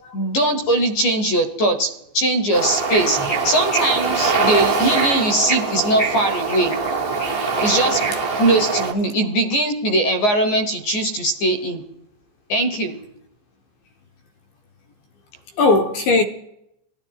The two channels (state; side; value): late; right; 14 ms